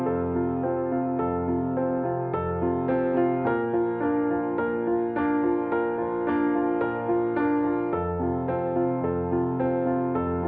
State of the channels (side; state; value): both; identical; correlation 1.00